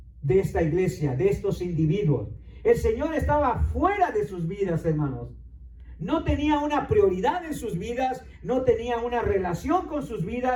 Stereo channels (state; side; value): identical; both; correlation 1.00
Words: de esta iglesia, de estos individuos. El Señor estaba fuera de sus vidas, hermanos. No tenía una prioridad en sus vidas, no tenía una relación con sus